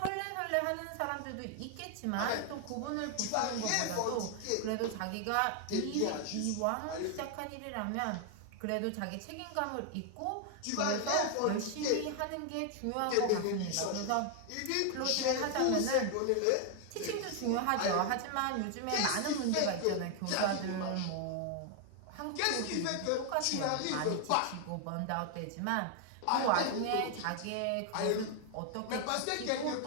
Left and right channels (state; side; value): different; both; correlation 0.00